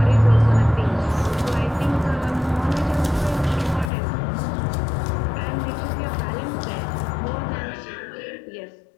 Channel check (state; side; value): drops out; right; at 3.9 s